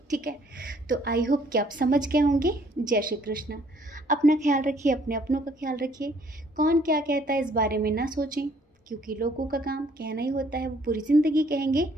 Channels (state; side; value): normal; both; correlation 0.62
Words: ठीक है। तो आई होप कि आप समझ गए होंगे। जय श्री कृष्ण। अपना ख्याल रखिए, अपने अपनों का ख्याल रखिए। कौन क्या कहता है इस बारे में ना सोचें, क्योंकि लोगों का काम कहना ही होता है, वो पूरी ज़िंदगी कहेंगे।